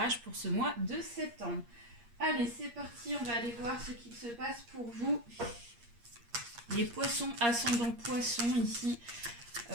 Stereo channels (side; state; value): left; late; 8.5 ms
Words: pour ce mois de septembre. Allez, c'est parti, on va aller voir ce qu'il se passe pour vous. Les poissons ascendant poissons ici